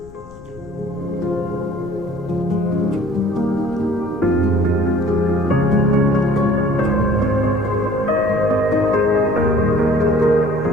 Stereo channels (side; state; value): left; noise; rumble, 21 dB below the sound